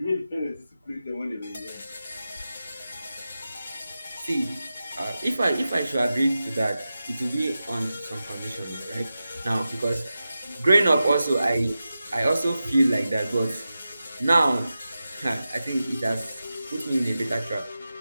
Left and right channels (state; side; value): inverted; both; correlation -0.93